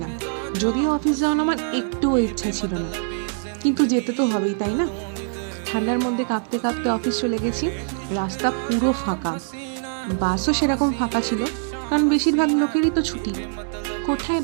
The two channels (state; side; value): silent; left; 58 dB below the other